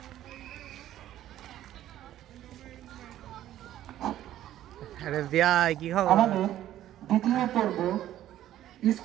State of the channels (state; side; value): quieter; left; 12.7 dB